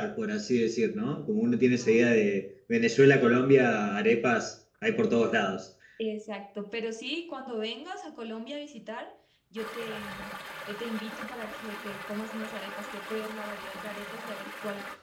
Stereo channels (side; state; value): both; identical; correlation 1.00